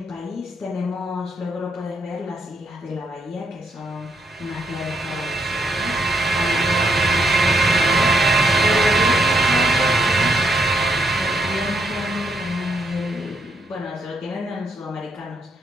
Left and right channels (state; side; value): normal; both; correlation 0.76